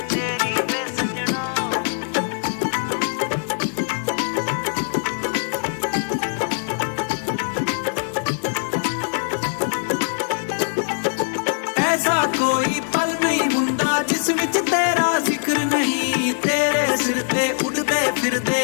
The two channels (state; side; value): silent; right; digital silence